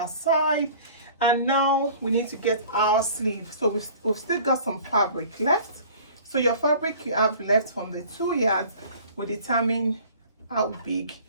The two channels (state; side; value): inverted; both; correlation -0.47